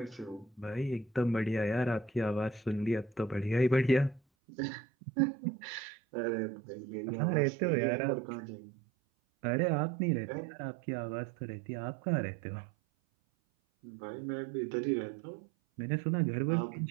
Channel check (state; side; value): drops out; left; at 4.2 s